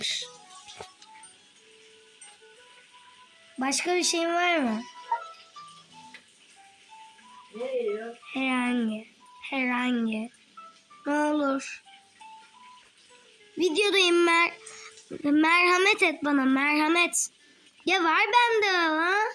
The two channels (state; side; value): identical; both; correlation 1.00